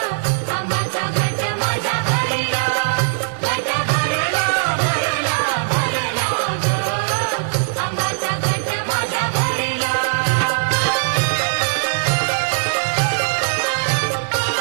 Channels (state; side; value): silent; left; 64 dB below the other